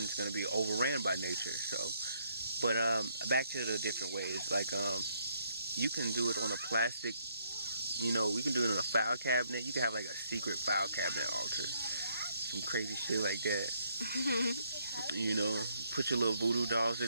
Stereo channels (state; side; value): inverted; both; correlation -0.72